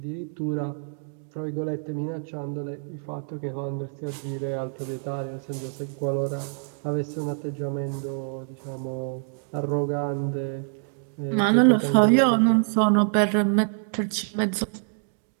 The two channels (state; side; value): silent; left; digital silence